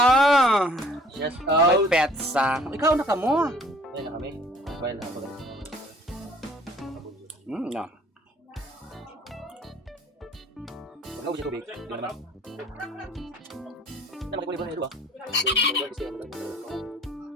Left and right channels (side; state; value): both; normal; correlation 0.54